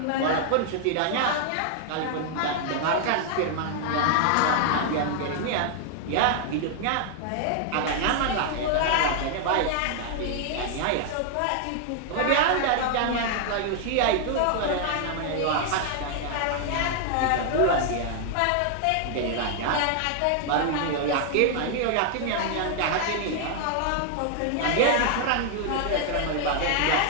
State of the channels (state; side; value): different; both; correlation 0.00